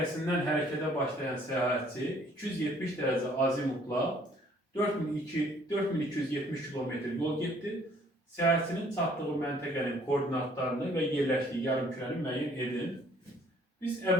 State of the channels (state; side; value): normal; both; correlation 0.60